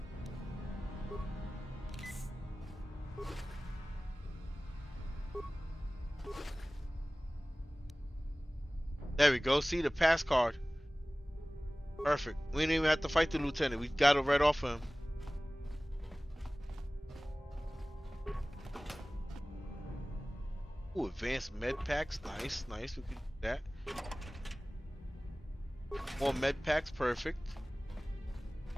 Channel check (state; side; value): normal; both; correlation 0.98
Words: There we go. See the pass card. Perfect. We didn't even have to fight the lieutenant. We got it right off him. Ooh, advanced med packs. Nice, nice. We can do that. More med packs. Perfect.